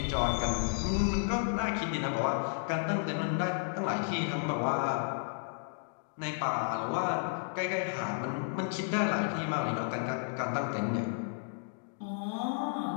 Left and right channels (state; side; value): silent; right; digital silence